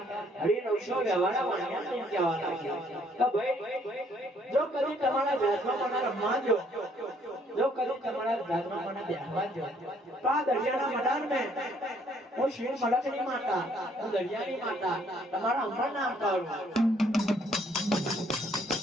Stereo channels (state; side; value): normal; both; correlation 0.65